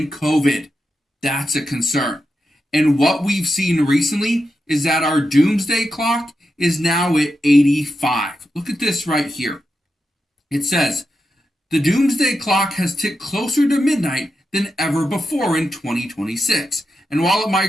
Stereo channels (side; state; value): both; normal; correlation 0.88